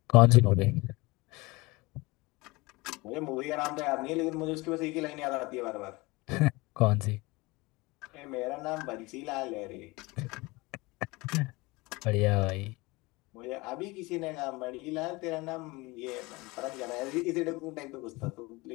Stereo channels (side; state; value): right; quieter; 23.4 dB